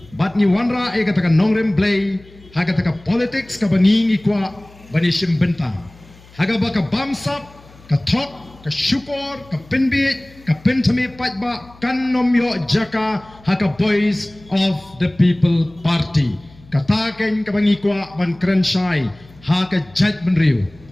bat ni wanra e kata ka nongrem play ha kata ka politics ka bangi ngikwa banishim benta haga baka bamsap ka thok ka syukur ka pinbit ka pentami pajba kan nomyo jaka haka voice of the people party kataken ka bangikwa ban krenshai haka judgment riu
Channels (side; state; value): left; noise; hum, 24 dB below the sound